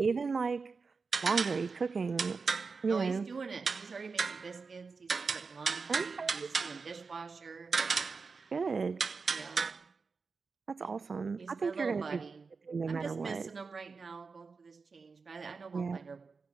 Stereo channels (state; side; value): quieter; left; 4.7 dB